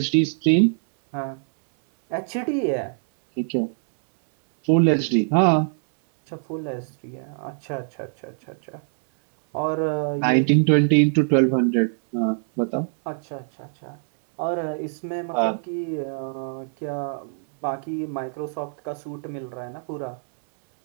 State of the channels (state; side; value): silent; left; 63 dB below the other